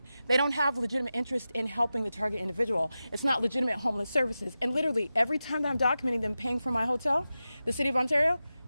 they don't have legitimate interest in helping the target individual. It's not legitimate homeless services. And literally every time that I'm documenting them paying for my hotel, the city of Ontario,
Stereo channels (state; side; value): inverted; both; correlation -0.93